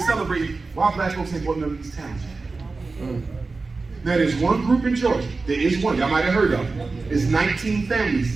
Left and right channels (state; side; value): quieter; left; 3.9 dB